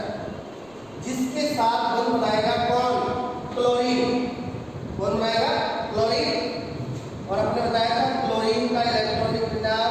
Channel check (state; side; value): noise; left; rumble, 28 dB below the sound